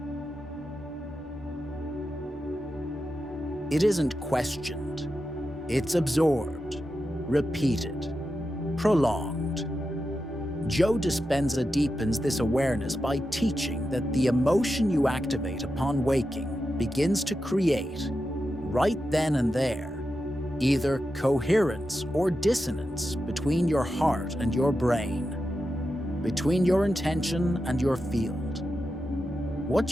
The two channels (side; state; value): both; normal; correlation 0.89